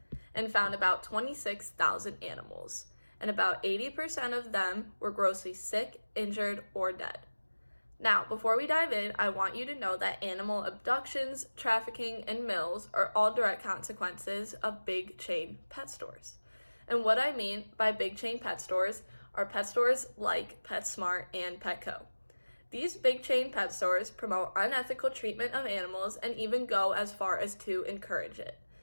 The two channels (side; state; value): both; inverted; correlation -1.00